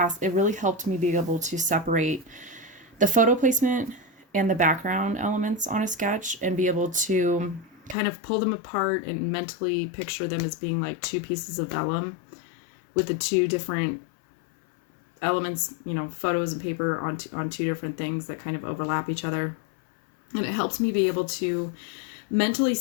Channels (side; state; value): right; drops out; at 8.0 s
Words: it really helped me be able to separate the photo placement and the background elements on a sketch and be able to kind of pull them apart and mentally picture them as being like 2 pieces of vellum with the 2 different elements, photos and paper on 2 different things that kind of overlap each other. And it helps me be able to mentally